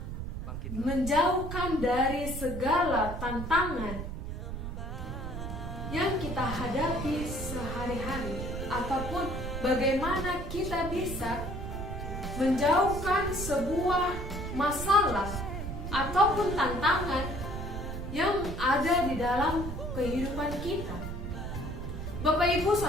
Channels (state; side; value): noise; right; rumble, 6 dB below the sound